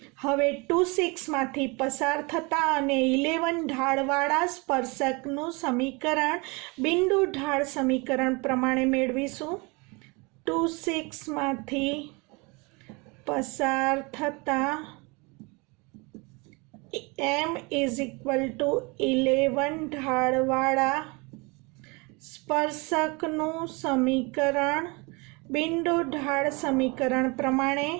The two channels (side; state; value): left; quieter; 28.3 dB